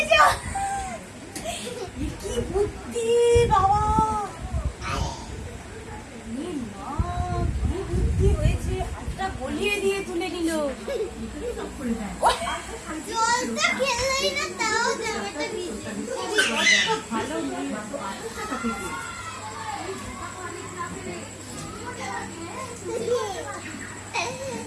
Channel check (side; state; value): both; identical; correlation 1.00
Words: কি বুদ্ধি বাবা কি বুদ্ধি হয়েছে হাতটা গলিয়ে দিয়ে তুলে নিল জলটা খেলেই না তাও জামাটা ভিজে ভালো